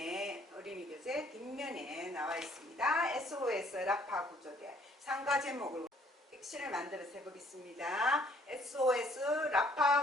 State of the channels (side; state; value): both; normal; correlation 0.62